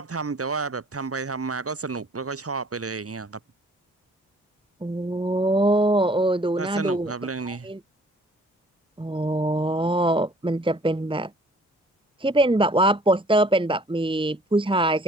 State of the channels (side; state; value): both; normal; correlation 0.56